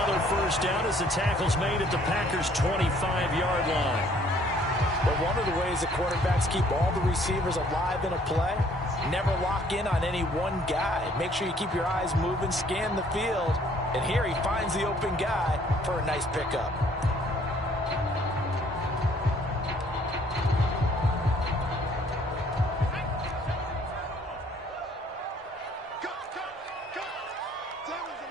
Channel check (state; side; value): normal; both; correlation 0.61